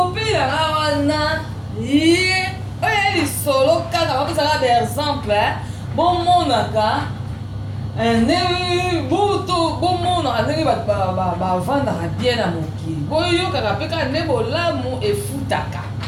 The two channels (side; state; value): both; identical; correlation 1.00